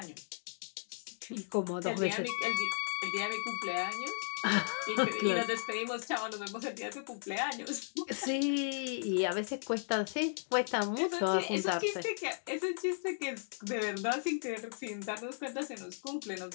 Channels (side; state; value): right; silent; digital silence